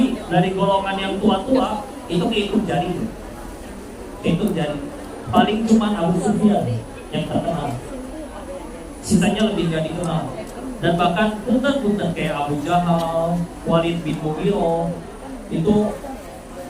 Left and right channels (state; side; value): identical; both; correlation 1.00